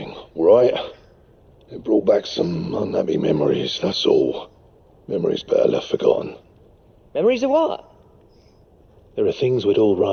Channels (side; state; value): both; identical; correlation 1.00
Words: right? It brought back some unhappy memories, that's all. Memories better left forgotten. Memories of what? There are things we'd all